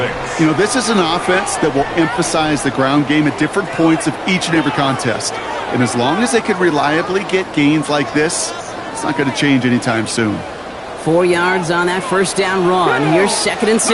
You know, this is an offense that will emphasize the ground game at different points of each and every contest. And as long as they can reliably get gains like this, it's not going to change anytime soon. 4 yards on that first down run. Here's 2nd and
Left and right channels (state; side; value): identical; both; correlation 1.00